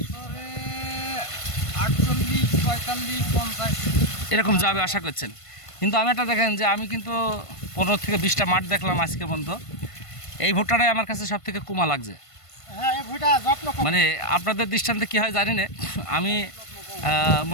বছরে 48, 45, 50 এরকম যাবে আশা করছেন? কিন্তু আমি একটা দেখেন যে আমি কিন্তু 15 থেকে 20টা মাঠ দেখলাম আজকে পর্যন্ত। এই ভুট্টাটাই আমার কাছে সব থেকে কুমা লাগছে। হ্যাঁ, এই ভুট্টা যত্ন কম। মানে আপনাদের দৃষ্টান্তে কী হয় জানি না, আমি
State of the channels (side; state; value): right; late; 1.5 ms